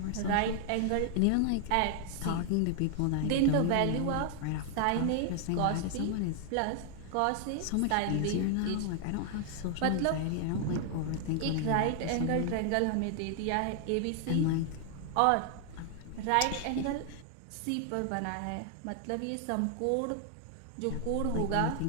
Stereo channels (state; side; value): different; both; correlation 0.00